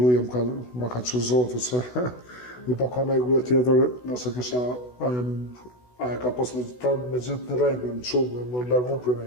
ma ka çu Zoti se më pa ka nëjë gruaj tjetër, nëse kisha aja ka pas me gjithë në rregull, në çumë, më largu për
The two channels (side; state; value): right; late; 16 ms